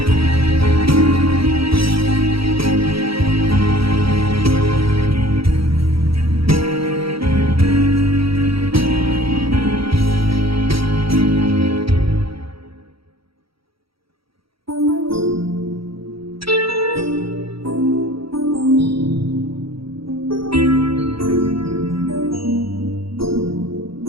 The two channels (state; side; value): late; left; 0.75 ms